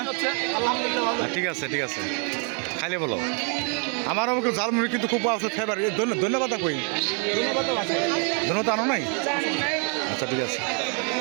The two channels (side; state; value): left; quieter; 39.7 dB